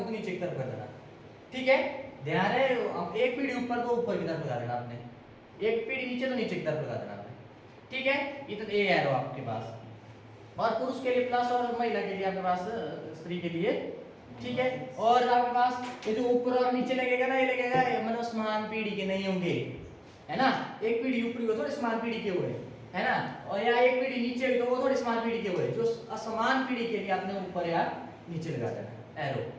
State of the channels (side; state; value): both; identical; correlation 1.00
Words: तो नीचे की तरफ कर देना। ठीक है, ध्यान है, एक पीढ़ी ऊपर तो ऊपर की तरफ लगा देना आपने, एक पीढ़ी नीचे तो नीचे की तरफ लगा देना आपने। ठीक है, ये तो ए एरो आपके पास, और पुरुष के लिए प्लस और महिला के लिए आपके पास स्त्री के लिए। ठीक है, और आपके पास ये जो ऊपर और नीचे लगेगा ना, ये लगेगा मतलब समान पीढ़ी के नहीं होंगे, है ना, एक पीढ़ी ऊपरी हो थोड़े समान पीढ़ी के हुए, है ना, और या एक पीढ़ी नीचे हुई तो वो थोड़ी समान पीढ़ी के हुए, जो असमान पीढ़ी के लिए आपने ऊपर या नीचे लगा देना एरो।